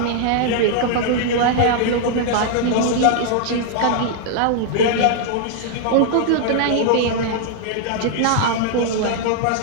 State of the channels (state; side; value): different; both; correlation -0.01